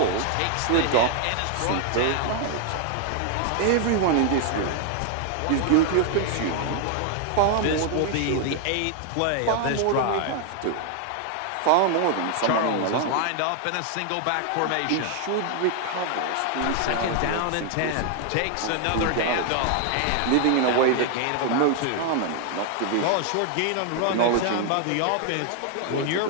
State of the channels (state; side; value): different; both; correlation 0.00